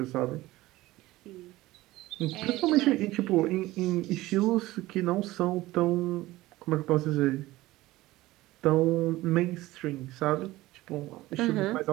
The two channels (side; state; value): left; quieter; 17.8 dB